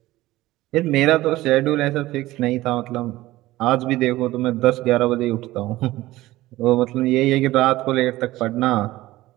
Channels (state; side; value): quieter; left; 17.2 dB